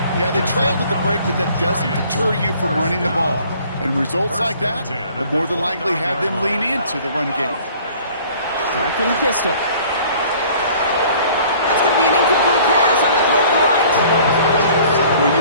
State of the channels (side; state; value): both; inverted; correlation -0.53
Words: Yeah, they trailed at the break, but that doesn't deter you from running the ball. And results like that will more than likely have them lean into the run game. Start from the pistol. That's going to be an incomplete pass on the throw to the right. Well,